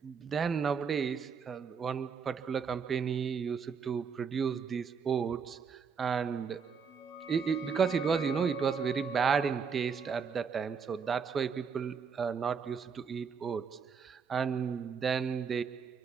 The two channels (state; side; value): quieter; left; 6.1 dB